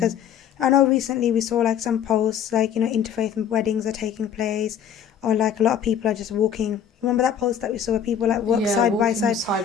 I know recently we saw some posts interfaith weddings are taking place, or a lot of people are just walking. Remember that post that we saw where people walk side by side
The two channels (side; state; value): right; quieter; 8.4 dB